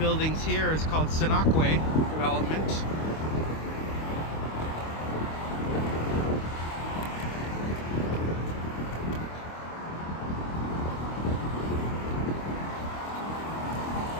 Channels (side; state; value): right; late; 25 ms